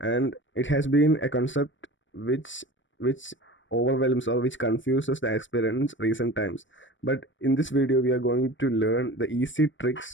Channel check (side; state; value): right; late; 0.55 ms